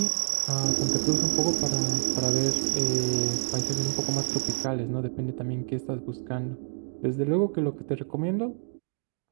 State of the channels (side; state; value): left; silent; digital silence